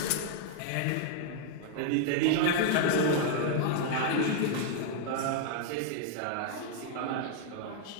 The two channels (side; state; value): both; different; correlation 0.00